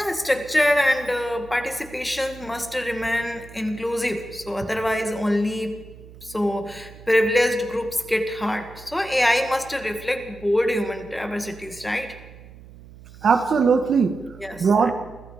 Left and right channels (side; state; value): right; noise; hum, 19 dB below the sound